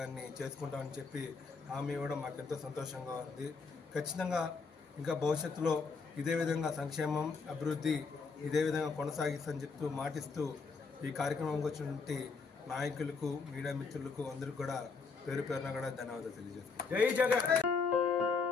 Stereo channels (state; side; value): quieter; right; 4.9 dB